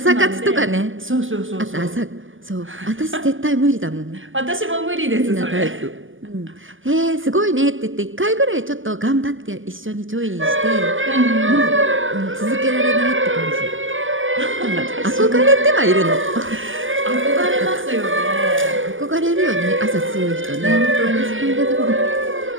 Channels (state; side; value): late; left; 0.58 ms